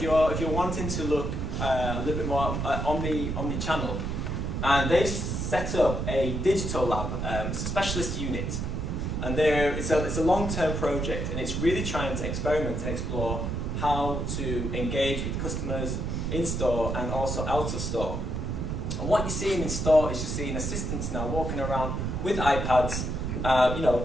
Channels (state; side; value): noise; right; rumble, 2 dB below the sound